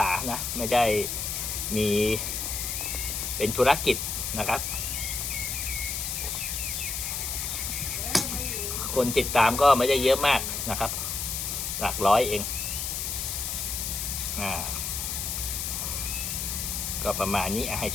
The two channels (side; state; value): left; noise; hiss, 2 dB below the sound